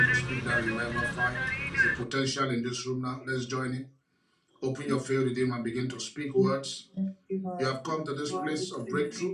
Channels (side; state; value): both; identical; correlation 1.00